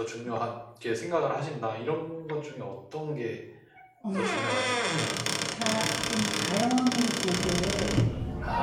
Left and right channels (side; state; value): both; identical; correlation 1.00